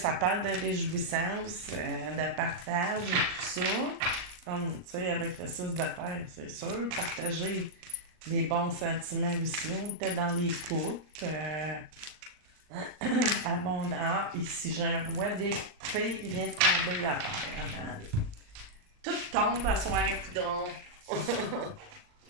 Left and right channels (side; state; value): left; late; 39 ms